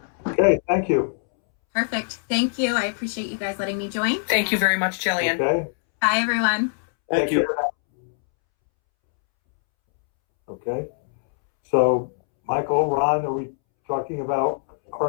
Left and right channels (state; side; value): silent; right; 64 dB below the other